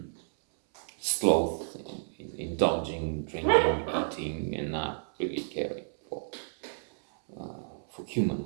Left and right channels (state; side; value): silent; left; 57 dB below the other